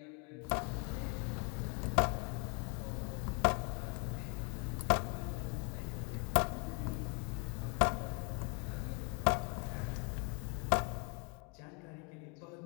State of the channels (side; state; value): right; quieter; 34.1 dB